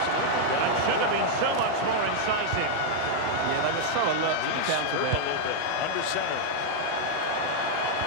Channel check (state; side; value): different; both; correlation -0.01